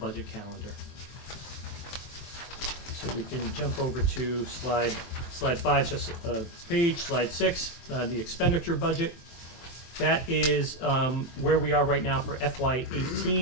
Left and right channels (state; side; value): late; right; 23 ms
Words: calendar. So we can jump over to slide 5, just a page, slide 6, the expenditure budget. That is where we are right now for